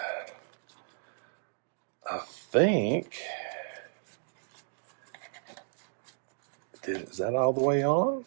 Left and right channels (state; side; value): silent; left; digital silence